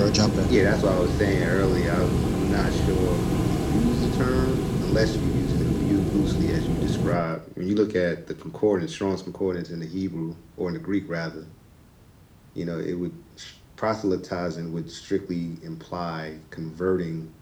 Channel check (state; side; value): identical; both; correlation 1.00